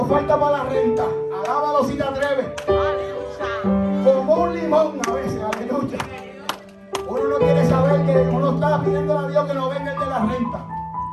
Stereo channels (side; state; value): both; identical; correlation 1.00